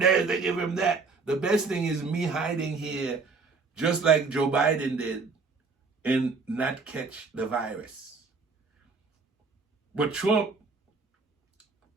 they give him that. The best thing is me hiding here, just like Joe Biden did, and not catch the virus. But Trump,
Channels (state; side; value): quieter; left; 4.4 dB